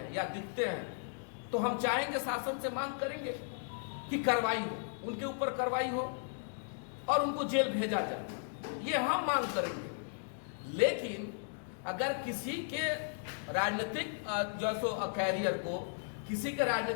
या दिखते हैं, तो हम चाहेंगे, शासन से मांग करेंगे कि कार्रवाई हो, उनके ऊपर कार्रवाई हो और उनको जेल भेजा जाए, ये हम मांग करेंगे। लेकिन अगर किसी के राजनीतिक जो कैरियर को, किसी के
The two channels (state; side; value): silent; right; digital silence